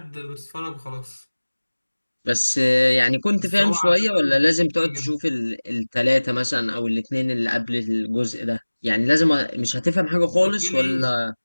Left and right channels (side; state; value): both; inverted; correlation -1.00